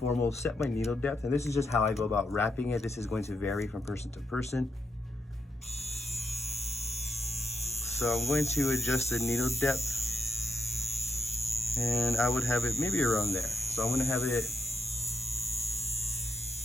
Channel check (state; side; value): normal; both; correlation 0.83